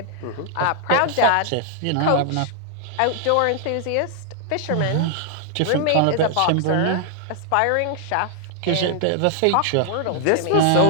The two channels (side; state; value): both; different; correlation 0.00